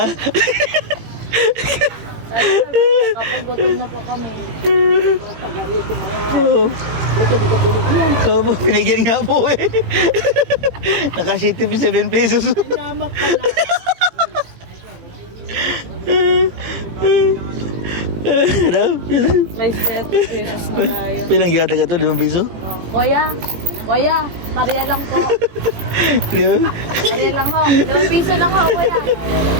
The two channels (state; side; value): late; left; 18 ms